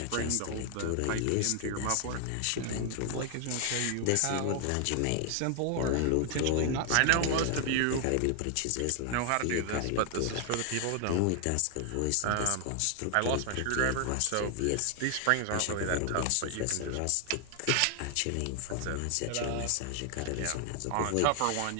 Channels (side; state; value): both; different; correlation 0.00